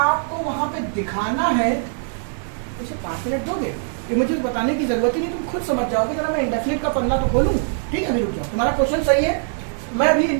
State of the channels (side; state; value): left; silent; 64 dB below the other